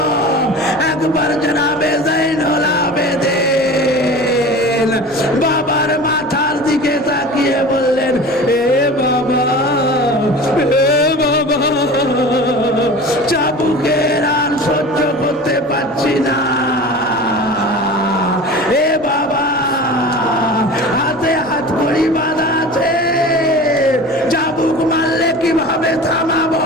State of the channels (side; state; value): both; normal; correlation 0.36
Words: একবার জনাবে জয়নুল আবেদিন বাবার মাথার দিকে তাকিয়ে বললেন, এ বাবা, এ বাবা, চাবুকের আর সহ্য করতে পারছি না, এ বাবা, হাতে হাত কড়ি বাঁধা আছে, চাবুক মারলে কিভাবে থামাবো?